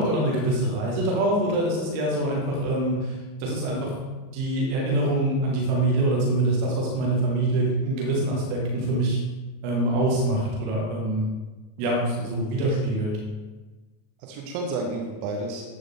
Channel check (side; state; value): left; late; 38 ms